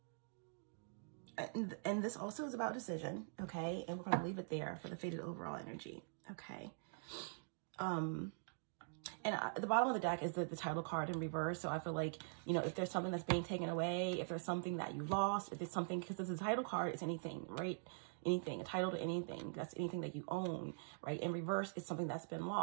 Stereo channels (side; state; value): left; silent; digital silence